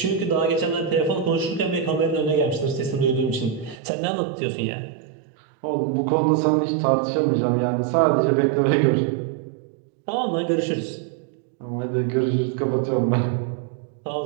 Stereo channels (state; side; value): drops out; left; at 3.8 s